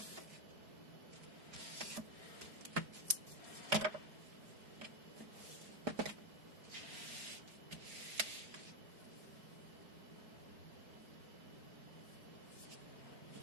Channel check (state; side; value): late; left; 4.7 ms